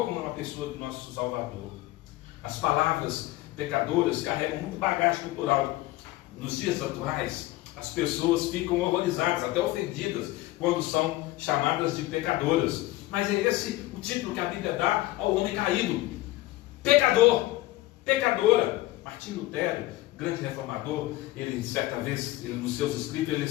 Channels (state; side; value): quieter; right; 17.7 dB